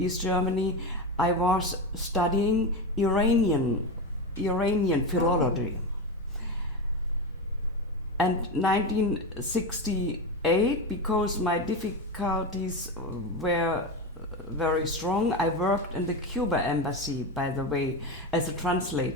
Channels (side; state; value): both; normal; correlation 0.17